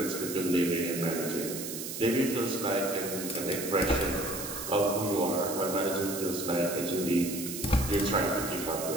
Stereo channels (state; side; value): noise; right; hiss, 7 dB below the sound